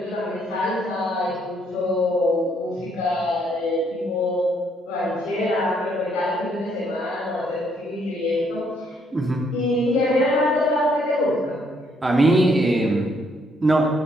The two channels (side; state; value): both; normal; correlation 0.70